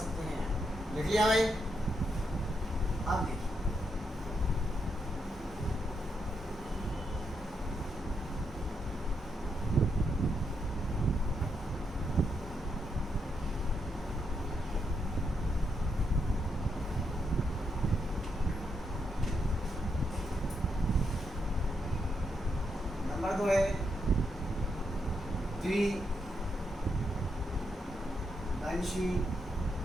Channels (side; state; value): both; normal; correlation 0.80